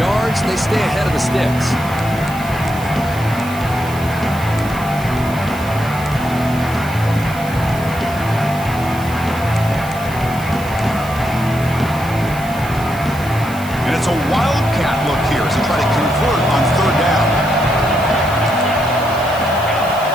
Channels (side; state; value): right; noise; hiss, 17 dB below the sound